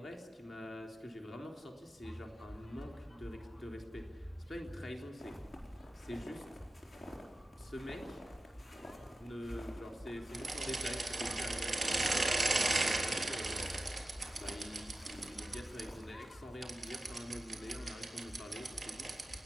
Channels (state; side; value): normal; both; correlation 0.93